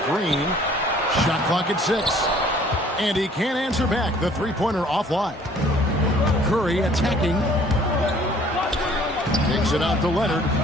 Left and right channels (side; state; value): both; normal; correlation 0.56